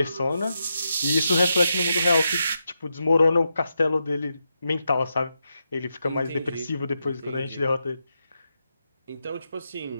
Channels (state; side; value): inverted; both; correlation -0.85